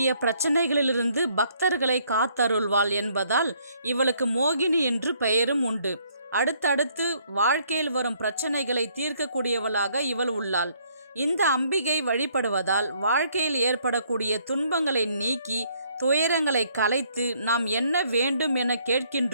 பிரச்சனைகளிலிருந்து பக்தர்களை காத்தருள்வாள் என்பதால் இவளுக்கு மோகினி என்று பெயரும் உண்டு. அடுத்தடுத்து வாழ்க்கையில் வரும் பிரச்சனைகளை தீர்க்கக்கூடியவளாக இவள் உள்ளாள். இந்த அம்பிகை வழிபடுவதால் வாழ்க்கையில் ஏற்படக்கூடிய துன்பங்களை நீக்கி துயரங்களை கலைத்து நாம் என்ன வேண்டும் என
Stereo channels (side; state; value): both; inverted; correlation -0.67